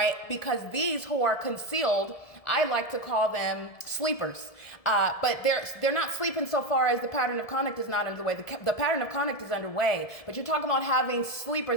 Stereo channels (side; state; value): right; late; 1.7 ms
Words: Because these who are concealed, I like to call them sleepers. But they're not sleeping so far as the pattern of conduct is not underway. The pattern of conduct is underway, but you're talking about having